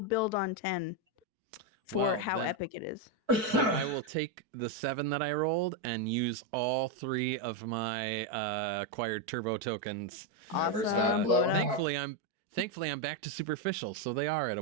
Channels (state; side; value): late; left; 4.6 ms